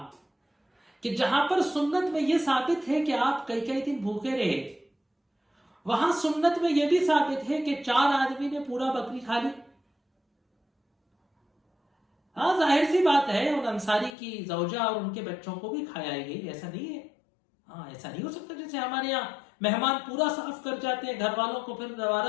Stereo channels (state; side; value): drops out; right; at 14.2 s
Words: کہ جہاں پر سنت میں یہ ثابت ہے کہ آپ کئی کئی دن بھوکے رہے، وہاں سنت میں یہ بھی ثابت ہے کہ 4 آدمی نے پورا بکری کھا لی۔ ہاں ظاہر سی بات ہے ان انصاری کی زوجہ اور ان کے بچوں کو بھی کھایا گئی، ایسا نہیں ہے، ہاں ایسا نہیں ہو سکتا جیسے ہمارے یہاں مہمان پورا صاف کر جاتے ہیں، گھر والوں کو پھر